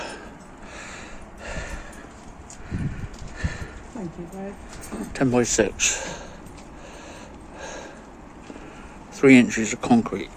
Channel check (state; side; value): identical; both; correlation 1.00